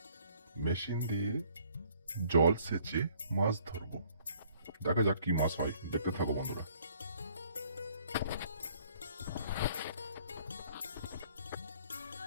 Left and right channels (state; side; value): inverted; both; correlation -0.61